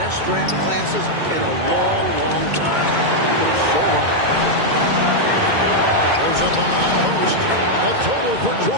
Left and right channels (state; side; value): late; left; 2.2 ms